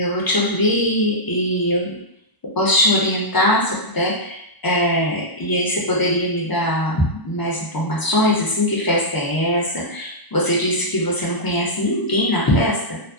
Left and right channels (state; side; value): late; right; 1.0 ms